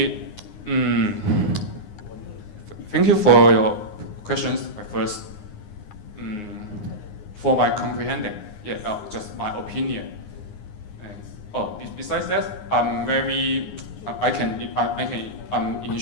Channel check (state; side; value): late; right; 9.7 ms